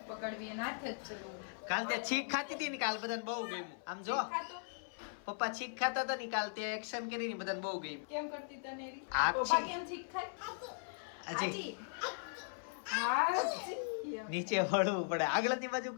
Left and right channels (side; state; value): right; silent; 52 dB below the other